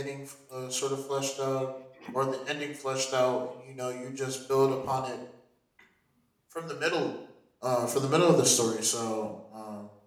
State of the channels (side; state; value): both; identical; correlation 1.00